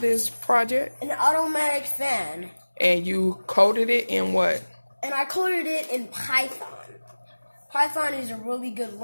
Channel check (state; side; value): inverted; both; correlation -1.00